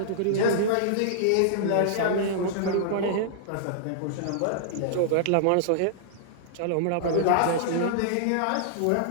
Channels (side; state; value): both; different; correlation -0.02